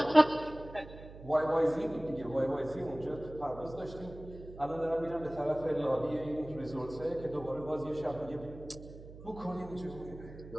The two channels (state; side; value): noise; right; hum, 15 dB below the sound